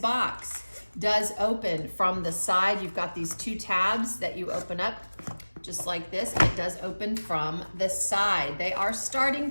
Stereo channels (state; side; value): inverted; both; correlation -1.00